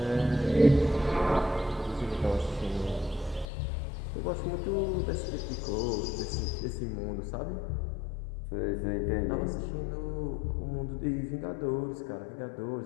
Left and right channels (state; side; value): drops out; right; at 3.5 s